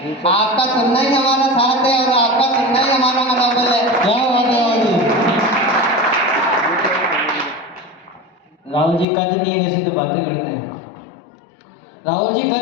आपका सुनना ही हमारा साथ है और आपका सुनना ही हमारा मनोबल है। क्या बात है राहुल जी। राहुल जी कद नहीं है जैसे तो बातें करते हैं। राहुल जी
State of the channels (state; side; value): drops out; right; at 9.1 s